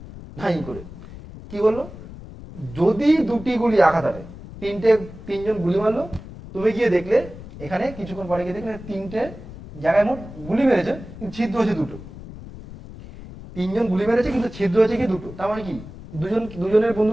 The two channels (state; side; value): noise; left; rumble, 14 dB below the sound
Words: ধাই করে। কি বললো, যদি 2টি গুলি আঘাত হানে, 3জন গুলি মারলো, তুমি গিয়ে দেখলে এখানে কিছুক্ষণ পরে গিয়ে দেখলে 3টে জায়গায় মোট গুলি মেরেছে, কিন্তু ছিদ্র হয়েছে 2টো। 3জন গুলি মেরেছে কিন্তু ছিদ্র হয়েছে কি 2টো, তার মানে কি দুজনের